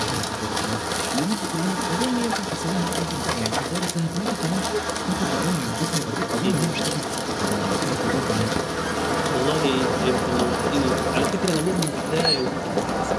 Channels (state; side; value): identical; both; correlation 1.00